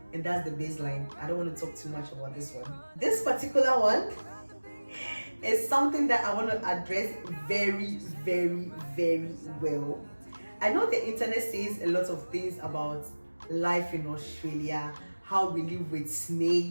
And that's the baseline. I don't want to talk too much about this one. This particular one is something that I want to address very, very, very well. I know the internet says a lot of things about life in Australia, how we live with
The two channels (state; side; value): inverted; both; correlation -1.00